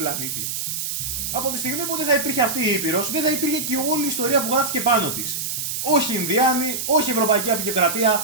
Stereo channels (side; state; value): right; noise; hiss, 3 dB below the sound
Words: Από τη στιγμή που δεν θα υπήρχε αυτή η Ήπειρος, δεν θα υπήρχε και όλη η ιστορία που γράφτηκε πάνω της. Όχι Ινδιάνοι, όχι Ευρωπαϊκή